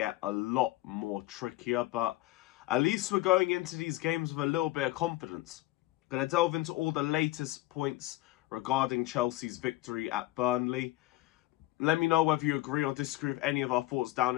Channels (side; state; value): right; quieter; 17.6 dB